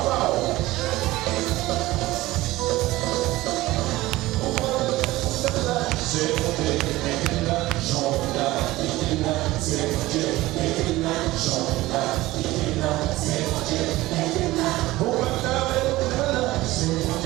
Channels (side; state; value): left; quieter; 18.1 dB